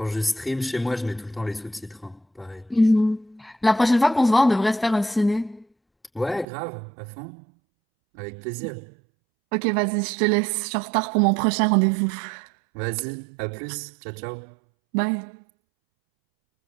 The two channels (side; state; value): left; drops out; at 6.5 s